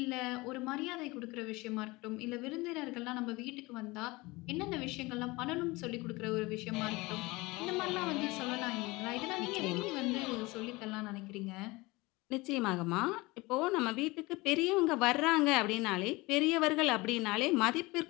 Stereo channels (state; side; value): quieter; right; 22.7 dB